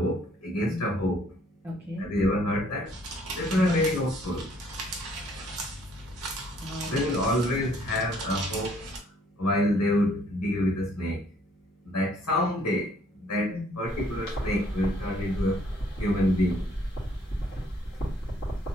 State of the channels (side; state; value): both; normal; correlation 0.63